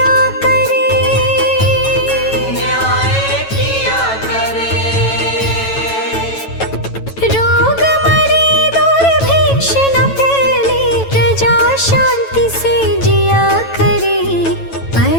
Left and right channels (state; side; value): late; right; 9.1 ms